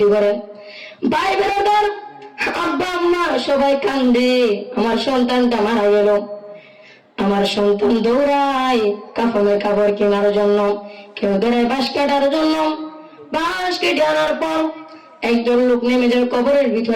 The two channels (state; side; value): identical; both; correlation 1.00